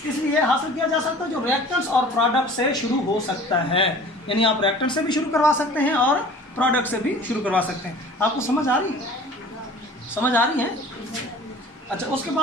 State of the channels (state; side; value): normal; both; correlation 0.45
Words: इसलिए हासिल किया जा सकता है जो रिएक्टेंट्स और प्रोडक्ट से शुरू हो सकता है। यानी आप रिएक्टेंट से भी शुरू करवा सकते हैं और प्रोडक्ट से भी शुरू करवा सकते हैं। आपको समझ आ रही है? अच्छा, उसके